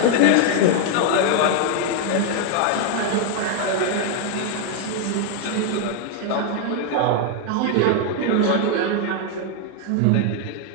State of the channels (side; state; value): both; different; correlation 0.00